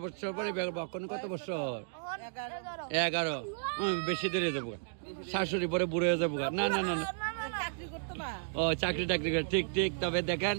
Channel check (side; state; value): left; silent; digital silence